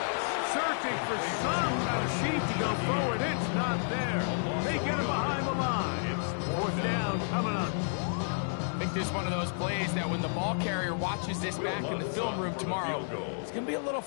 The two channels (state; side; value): silent; right; digital silence